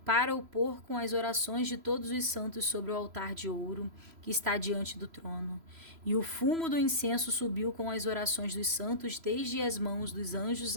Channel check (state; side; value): late; left; 3.0 ms